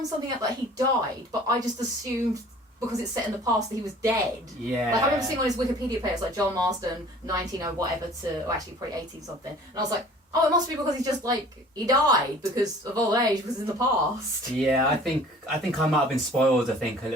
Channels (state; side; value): normal; both; correlation 0.49